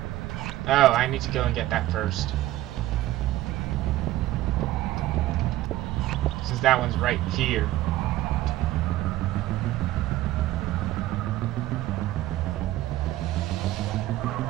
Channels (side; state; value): left; quieter; 15.4 dB